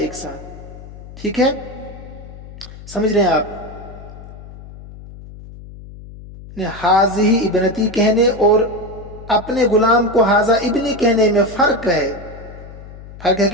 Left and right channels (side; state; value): left; noise; hum, 16 dB below the sound